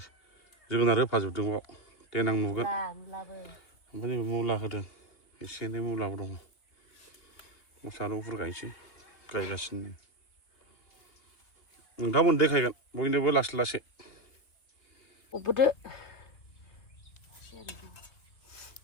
जोगोनार होफाजोबदों बाव देनां नुगोन ओमफ्राय नैबे मुला होदों एसे एनै मुलाबो दङ सामब्राम गुफुर गायनोसै गायगासिनो नोंथांमोन देखायगोन बयनोबो लासै लासै अबोदो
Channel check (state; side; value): late; right; 2.8 ms